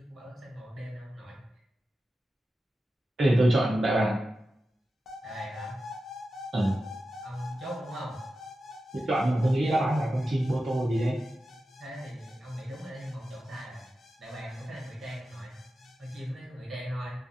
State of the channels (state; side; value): normal; both; correlation 0.92